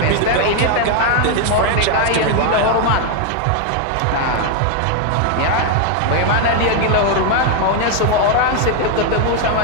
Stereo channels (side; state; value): both; different; correlation 0.01